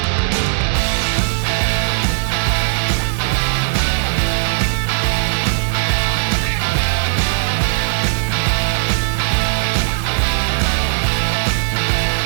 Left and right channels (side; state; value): left; silent; 56 dB below the other